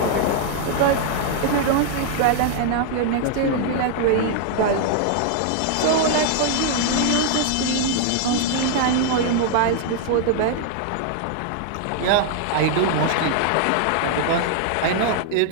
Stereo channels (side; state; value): both; different; correlation 0.00